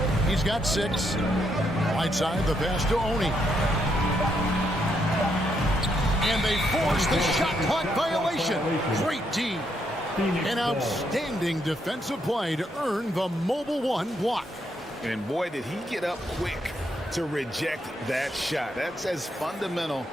He's got 6. Whiteside, the pass to Oni. And they force the shot clock violation. Great D. An outstanding defensive play to earn the Mobile One block. And boy, did he get up quick to reject that shot. That's as fundamental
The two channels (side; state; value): both; normal; correlation 0.77